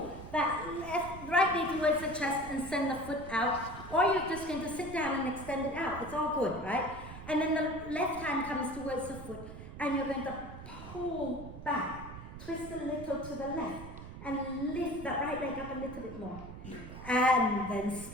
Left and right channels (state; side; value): noise; right; rumble, 12 dB below the sound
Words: that right knee towards the chest and send the foot out. Or you're just going to sit down and extend it out. It's all good, right? And then the left hand comes towards the foot and you're going to pull back. Twist a little to the left. and lift that right leg up a little bit more. And then